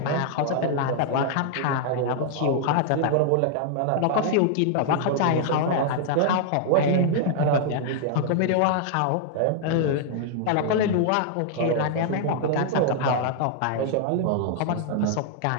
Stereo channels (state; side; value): different; both; correlation -0.01